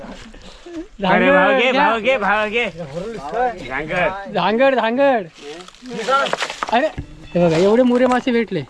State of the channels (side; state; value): both; identical; correlation 1.00